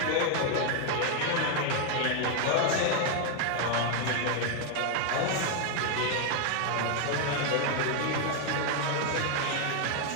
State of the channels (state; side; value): different; both; correlation 0.01